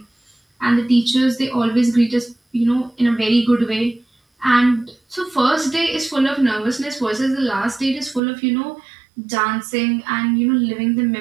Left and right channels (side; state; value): left; drops out; at 8.2 s